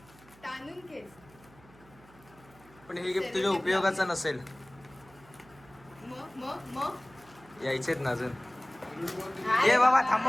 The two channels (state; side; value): noise; right; hum, 25 dB below the sound